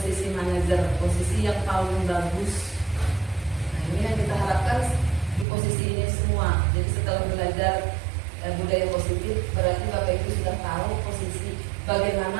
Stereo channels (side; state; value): left; drops out; at 5.5 s